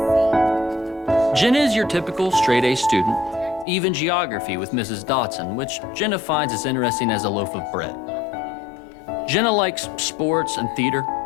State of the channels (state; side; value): drops out; right; at 3.7 s